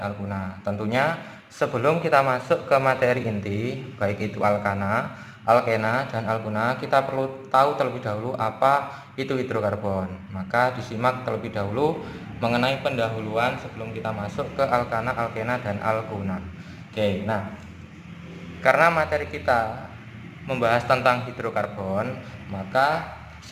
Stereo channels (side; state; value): both; identical; correlation 1.00